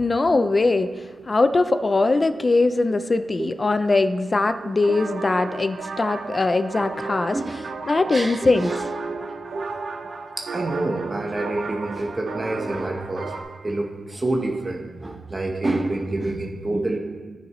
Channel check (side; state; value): both; normal; correlation 0.94